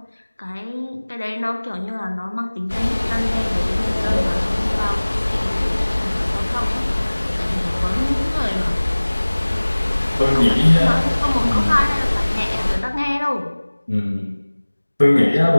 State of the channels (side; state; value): both; inverted; correlation -1.00